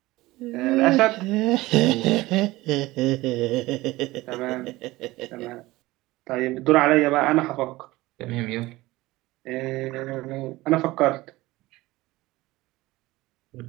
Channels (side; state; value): left; quieter; 19.1 dB